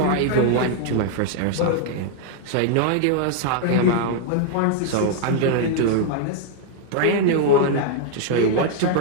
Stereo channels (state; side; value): different; both; correlation 0.00